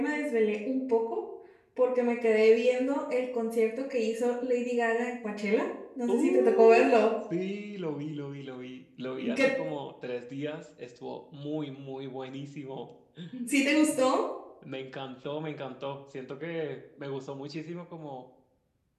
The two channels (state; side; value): identical; both; correlation 1.00